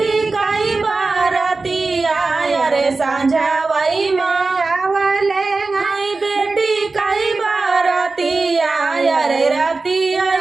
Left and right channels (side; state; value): left; quieter; 3.8 dB